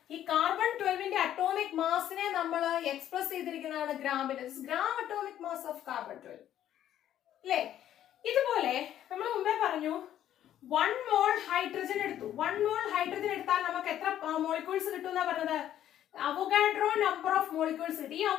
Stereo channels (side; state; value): right; quieter; 11.4 dB